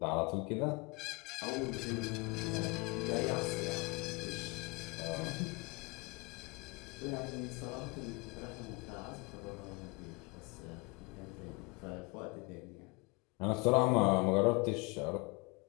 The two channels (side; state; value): right; quieter; 27.5 dB